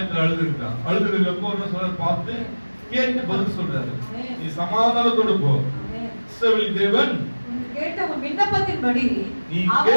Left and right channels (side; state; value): both; inverted; correlation -1.00